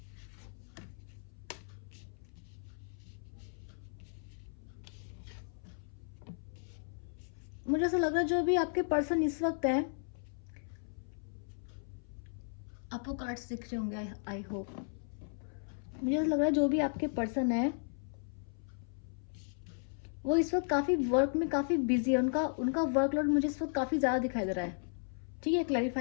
मुझे ऐसा लग रहा है जो भी आपके पर्सन इस वक्त है, आपको कार्ड्स दिख रहे होंगे। I hope. मुझे ऐसा लग रहा है जो भी आपके पर्सन है वो इस वक्त काफी वर्क में काफी बिजी है। उनका उनका वर्कलोड मुझे इस वक्त काफी ज्यादा दिखाई दे रहा है। ठीक है,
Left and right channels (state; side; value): silent; right; 54 dB below the other